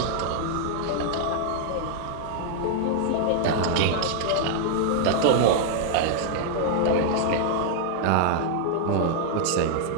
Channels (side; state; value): both; different; correlation -0.01